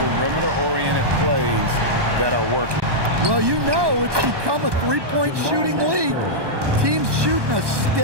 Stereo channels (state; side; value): late; left; 1.2 ms